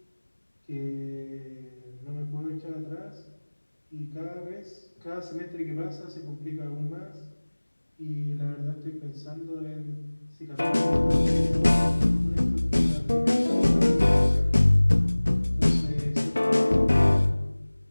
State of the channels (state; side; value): inverted; both; correlation -1.00